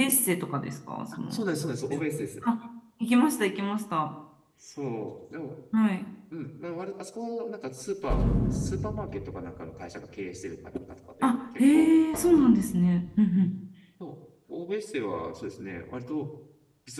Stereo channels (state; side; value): identical; both; correlation 1.00